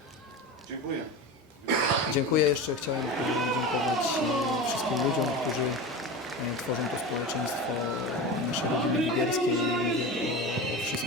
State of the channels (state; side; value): normal; both; correlation 0.27